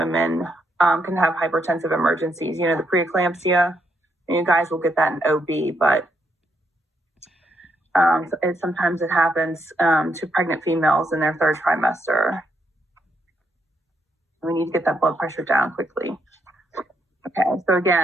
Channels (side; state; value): both; normal; correlation 0.77